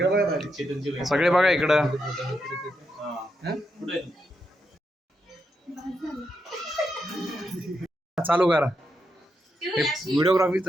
बघा दादा. सगळे बघा इकडं. चालू करा. व्हिडिओग्राफी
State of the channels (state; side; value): normal; both; correlation 0.83